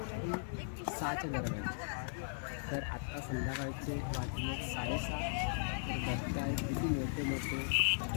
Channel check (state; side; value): silent; right; digital silence